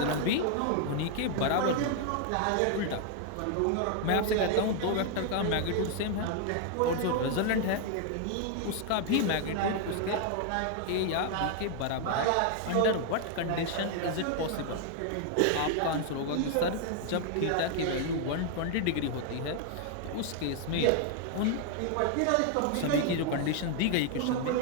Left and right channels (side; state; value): both; different; correlation 0.00